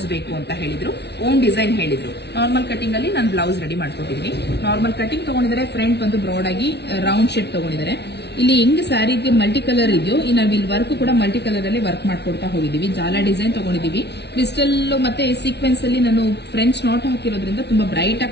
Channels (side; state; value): right; late; 0.50 ms